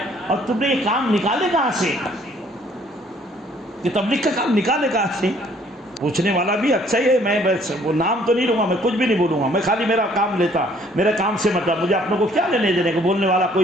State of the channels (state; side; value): normal; both; correlation 0.61